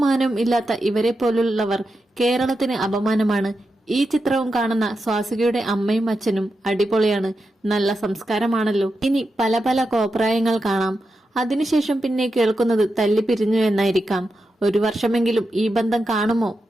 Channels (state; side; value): normal; both; correlation 0.88